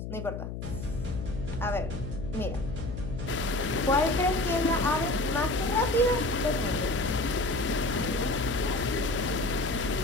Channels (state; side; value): noise; left; hum, 7 dB below the sound